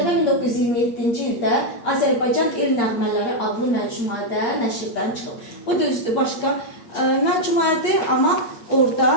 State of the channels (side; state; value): right; late; 8.6 ms